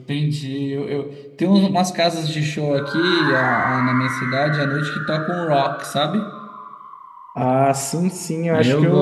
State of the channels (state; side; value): identical; both; correlation 1.00